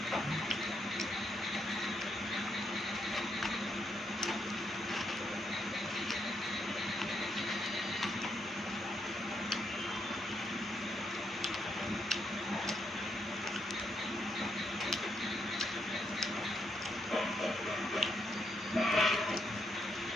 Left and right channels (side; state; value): both; normal; correlation 0.77